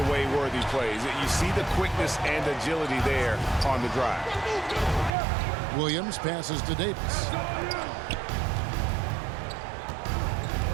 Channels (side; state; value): left; drops out; at 5.1 s